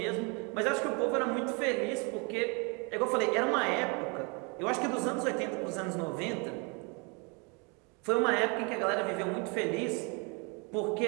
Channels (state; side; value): quieter; left; 32.0 dB